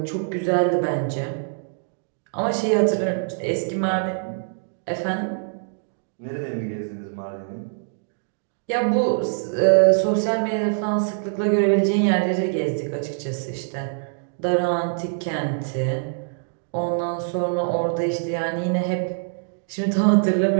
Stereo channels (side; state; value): left; silent; digital silence